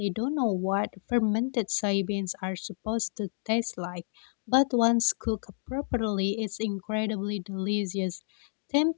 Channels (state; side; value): silent; right; digital silence